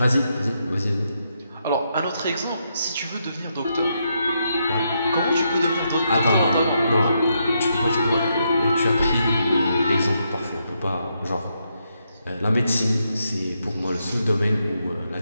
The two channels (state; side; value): inverted; both; correlation -0.80